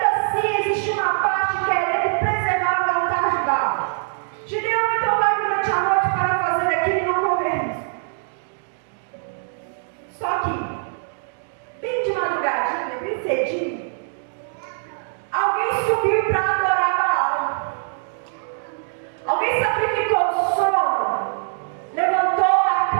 assim existe uma parte querendo preservar o altar de Baal. Gideão então vai durante a noite para fazer aquilo e não correr risco. Só que, bem de madrugadinha, bem cedinho, alguém subiu para adorar Baal. Alguém sacrificou o sono, levantou da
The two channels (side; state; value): left; silent; 64 dB below the other